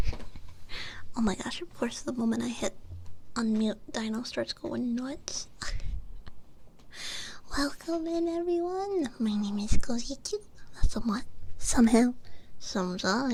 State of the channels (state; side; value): identical; both; correlation 1.00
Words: Oh my gosh, of course, the moment I hit unmute, Dino starts going nuts. Welcome in, everyone. My name is Kozichu. Somewhat, somehow,